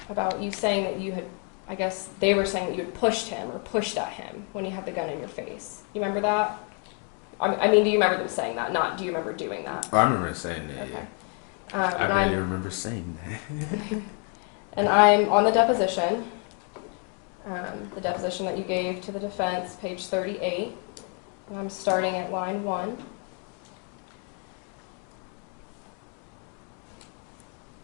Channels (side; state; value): right; quieter; 39.7 dB